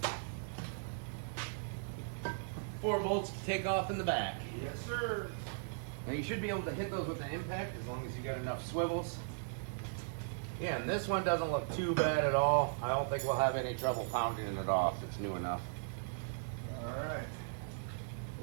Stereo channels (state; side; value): silent; left; digital silence